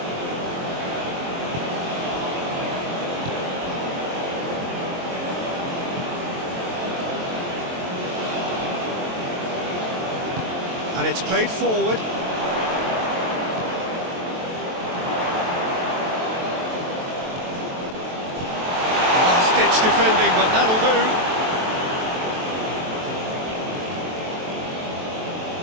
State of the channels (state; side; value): late; left; 23 ms